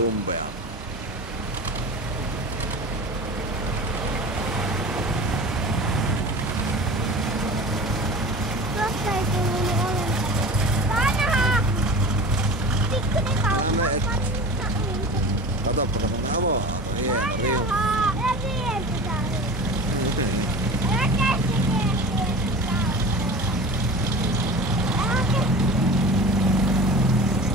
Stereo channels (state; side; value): normal; both; correlation 0.35